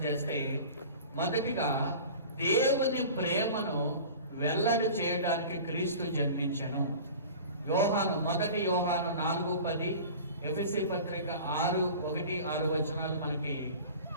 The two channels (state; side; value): inverted; both; correlation -0.39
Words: చేస్తే, మొదటిగా దేవుని ప్రేమను వెల్లడి చేయడానికి క్రీస్తు జన్మించను. మొదటి యోహాను 4:10, ఎఫెసీ పత్రిక 6:1-6 వచనాలు మనకి